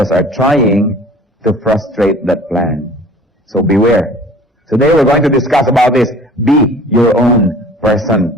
are trying to frustrate that plan. So beware. Today we're going to discuss about this. Be your own person.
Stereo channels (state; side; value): normal; both; correlation 0.47